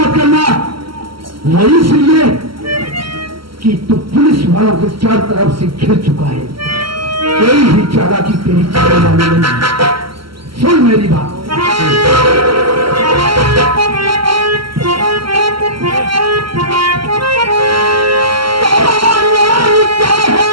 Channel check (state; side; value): late; left; 0.74 ms